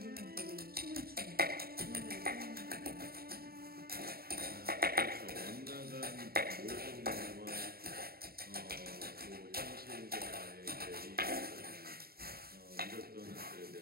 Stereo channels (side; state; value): left; late; 0.45 ms